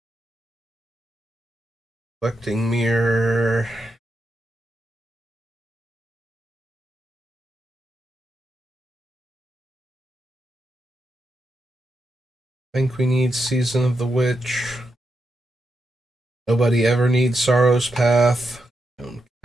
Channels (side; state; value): both; normal; correlation 0.85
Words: Reflecting Mirror. I think we need Season of the Witch. Nobody ever needs Sorrow's Path.